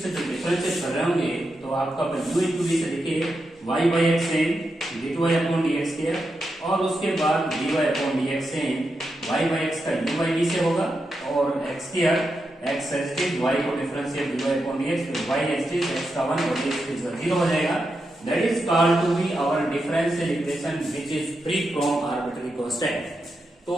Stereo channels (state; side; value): normal; both; correlation 0.86